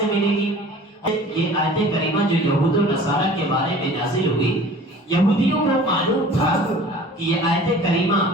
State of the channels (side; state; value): both; normal; correlation 0.45